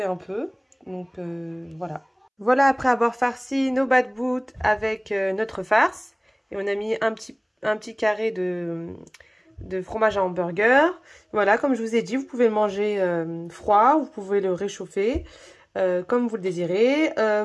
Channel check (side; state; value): both; identical; correlation 1.00